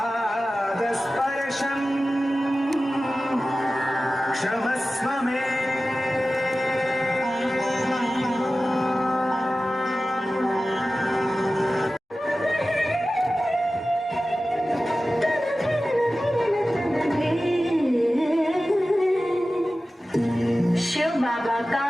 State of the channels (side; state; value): both; normal; correlation 0.95